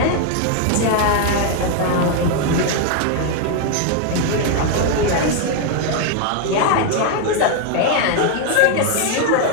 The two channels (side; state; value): both; different; correlation 0.00